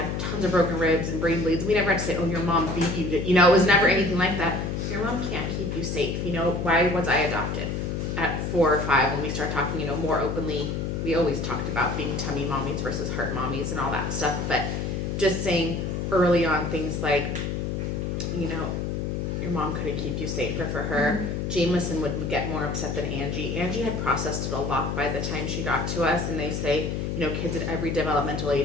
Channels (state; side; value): noise; left; hum, 2 dB below the sound